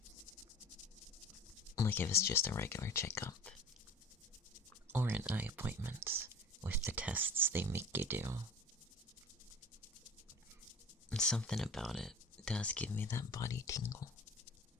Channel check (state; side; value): normal; both; correlation 0.40